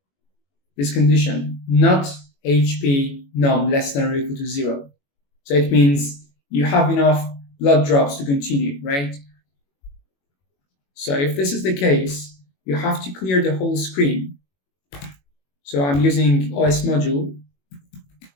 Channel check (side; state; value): right; late; 21 ms